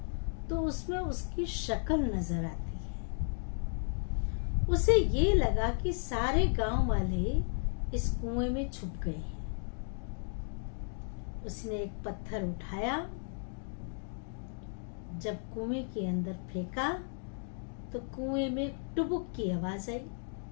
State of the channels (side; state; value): right; silent; 55 dB below the other